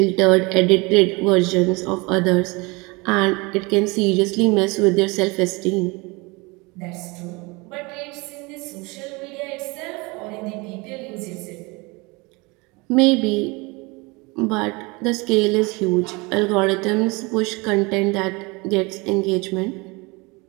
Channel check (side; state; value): left; quieter; 26.3 dB